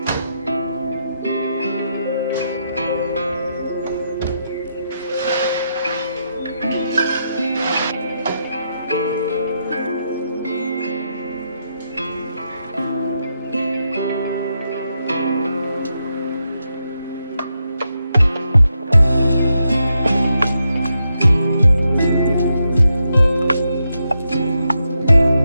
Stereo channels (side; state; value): both; inverted; correlation -0.83